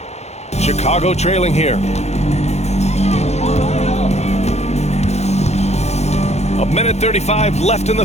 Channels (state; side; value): late; right; 0.32 ms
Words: Chicago trailing here. A minute 35 left in the